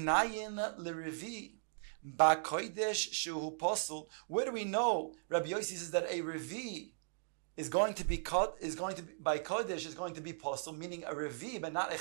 lerevi ba kodesh shehu posel. Where do we know Rabbi Yosi says that a revi is going to be by kodesh is going to be posel, meaning a revi but not a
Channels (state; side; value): silent; left; digital silence